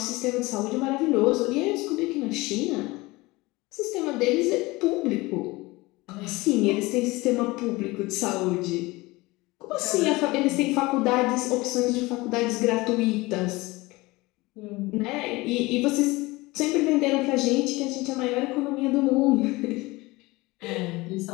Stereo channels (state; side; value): quieter; right; 21.7 dB